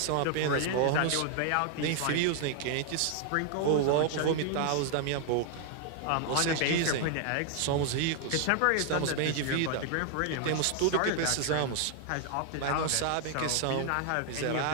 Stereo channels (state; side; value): different; both; correlation 0.00